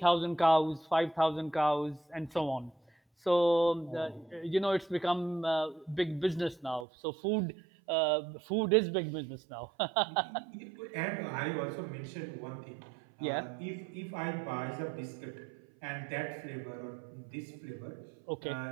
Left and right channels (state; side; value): drops out; left; at 6.9 s